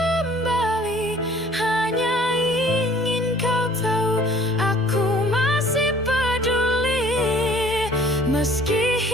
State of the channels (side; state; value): both; normal; correlation 0.54